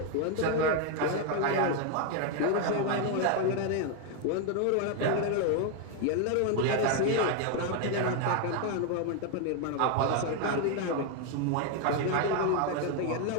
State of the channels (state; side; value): different; both; correlation 0.01